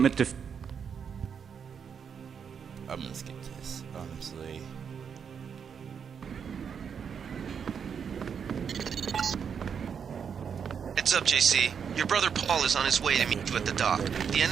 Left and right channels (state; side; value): quieter; left; 7.0 dB